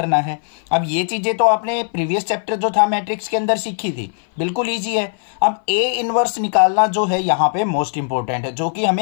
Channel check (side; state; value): right; silent; 60 dB below the other